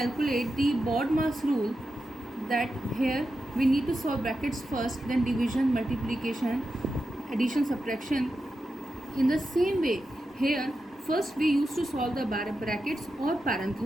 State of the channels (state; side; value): normal; both; correlation 0.89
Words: the BODMAS rule, that here we need to solve brackets first, then division, multiplication, addition, subtraction. In the same way, here first we used to solve the brackets or